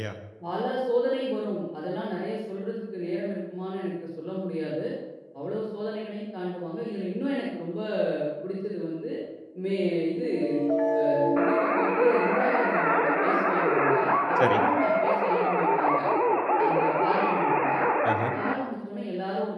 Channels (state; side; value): identical; both; correlation 1.00